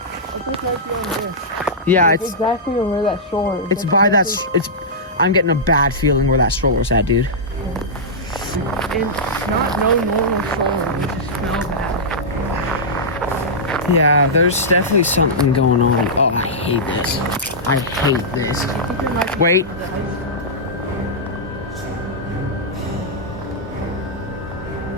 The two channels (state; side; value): normal; both; correlation -0.12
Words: This might be on there. Yeah, It's it's exactly where that stroller is. it's by that. It's. I'm getting a bad feeling where that stroller's at, dude. And not no normal stroller. You just smell bad. Yeah, there's definitely something going on. Oh, I hate this. I hate this. I think there might be Wait. the ice.